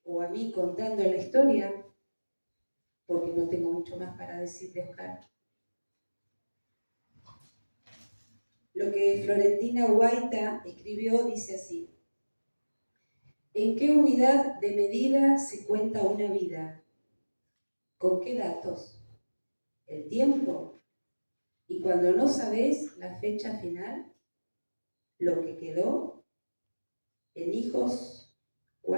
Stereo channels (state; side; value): inverted; both; correlation -1.00